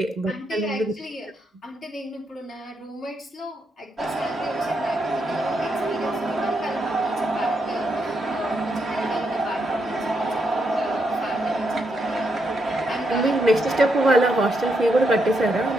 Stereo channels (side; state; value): both; normal; correlation 0.80